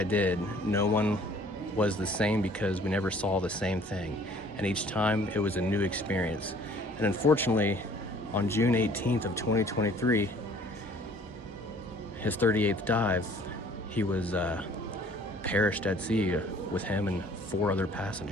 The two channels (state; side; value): normal; both; correlation 0.55